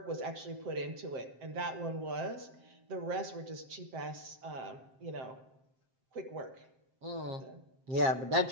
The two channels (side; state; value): left; late; 7.6 ms